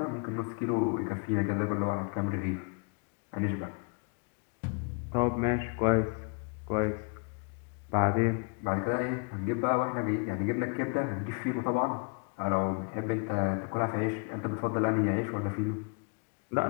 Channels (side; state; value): right; quieter; 35.8 dB